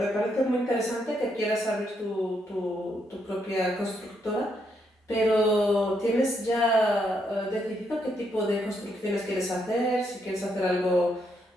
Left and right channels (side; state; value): both; normal; correlation 0.77